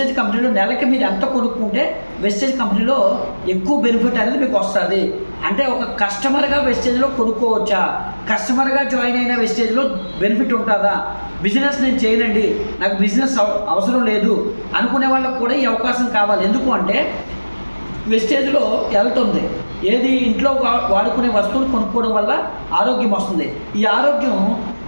కంపెనీలో నెలకి మీరు ఎంత కొనుక్కుంటే వెస్టేజ్ కంపెనీలో ఎక్కువ బెనిఫిట్ అనేది మీకు వస్తుంది. అంటే ఒక కస్టమర్గా వెస్టేజ్లో కొనుక్కోవచ్చా, కస్టమర్గా జాయిన్ అయిన వెస్టేజ్లో బెనిఫిట్ ఉంటుందా, బిజినెస్ నేను చేయనండి నాకు బిజినెస్ అవసరం లేదు అనుకునే వాళ్ళకు కూడా ఈ అవకాశం కావాలి. ఎందుకు అంటే వెస్టేజ్లో హెల్త్ ఉంది. ఏది ఇంట్లో వాడుకునే వస్తువులు కొనుక్కోవడం వల్ల ఆరోగ్యం వస్తుంది. ఈ ఆరోగ్యం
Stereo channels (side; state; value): both; inverted; correlation -1.00